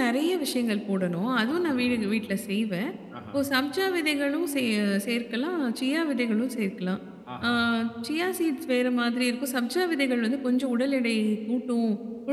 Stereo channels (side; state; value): both; identical; correlation 1.00